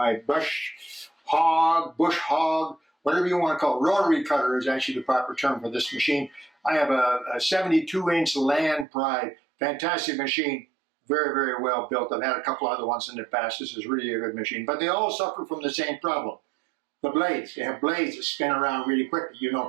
bush hog, whatever you want to call it. Rotary cutter is actually the proper term for this machine. I have a 72-inch Land Pride, fantastic machine, very, very well built. I've had a couple other ones in the past. This is really a good machine, but they all suffer from the same problem. The blades, they have blades that spin around really quickly. You know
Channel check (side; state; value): left; drops out; at 8.8 s